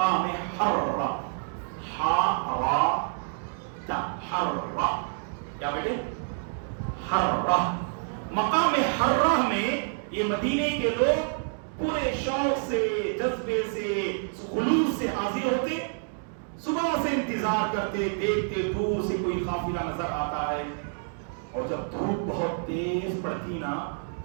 حرہ, حرہ, کیا بیٹے؟ حرہ. مقام حرہ میں یہ مدینے کے لوگ پورے شوق سے, جذبے سے, خلوص سے حاضر ہوتے, صبح سے انتظار کرتے, دیکھتے دور سے کوئی قافلہ نظر آتا ہے, اور جب دھوپ بہت تیز پڑتی نا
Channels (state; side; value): silent; left; digital silence